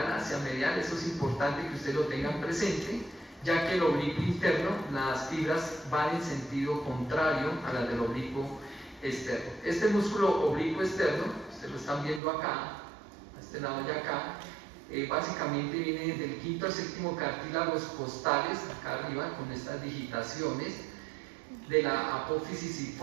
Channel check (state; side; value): drops out; left; at 12.2 s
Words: hacia medial. Eso es importante que ustedes lo tengan presente, ya que el oblicuo interno, las fibras van en sentido contrario a las del oblicuo externo. Este músculo oblicuo externo, ustedes lo están viendo acá, a este lado de acá, básicamente viene del quinto al séptimo cartílagos costales, acá arriba, con estas digitaciones de la apófisis